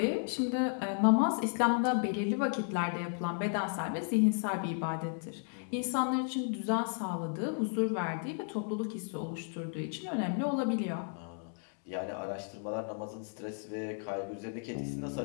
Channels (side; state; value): right; silent; 55 dB below the other